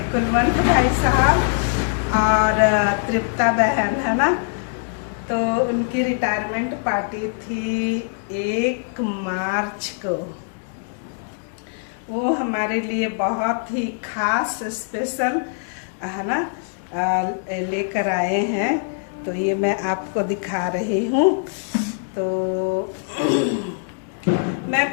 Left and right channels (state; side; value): silent; right; digital silence